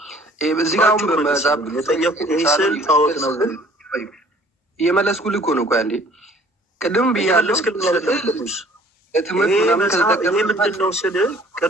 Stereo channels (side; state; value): both; normal; correlation 0.54